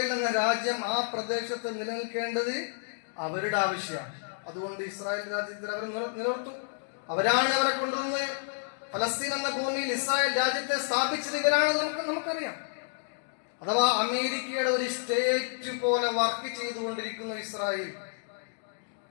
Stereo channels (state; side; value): silent; right; digital silence